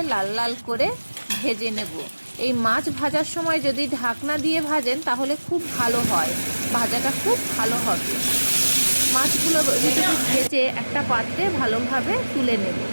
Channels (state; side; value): inverted; both; correlation -1.00